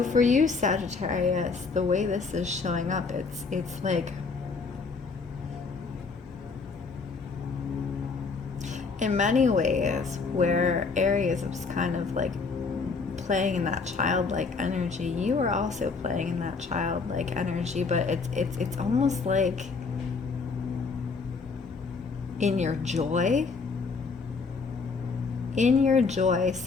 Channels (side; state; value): right; quieter; 4.6 dB